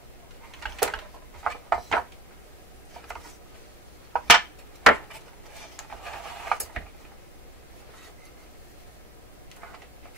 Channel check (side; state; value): both; normal; correlation 0.44